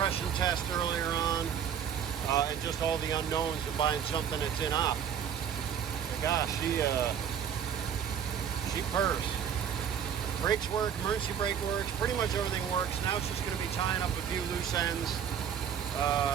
test earlier on, and just all the unknowns of buying something that's Inop. Gosh, she purrs. Brakes work, emergency brake works, pretty much everything works. Now it's just going to be tying up a few loose ends,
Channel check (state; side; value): quieter; left; 8.4 dB